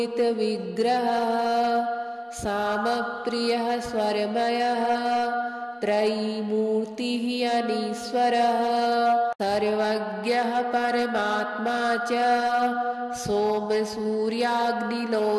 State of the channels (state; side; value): identical; both; correlation 1.00